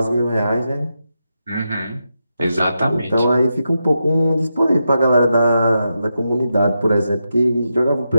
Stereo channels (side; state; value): both; inverted; correlation -0.87